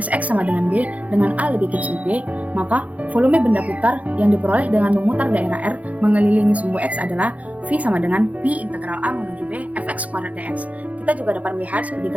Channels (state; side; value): late; left; 0.069 ms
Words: X sama dengan B, dengan A lebih kecil B, maka volume benda putar yang diperoleh dengan memutar daerah R mengelilingi sumbu X adalah V sama dengan P integral A menuju B fx kuadrat dx. Kita juga dapat melihat seperti